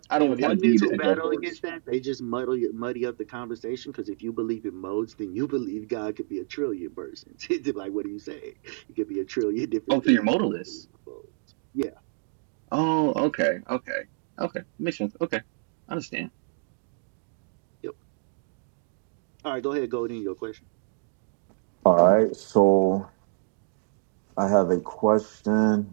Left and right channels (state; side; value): silent; left; digital silence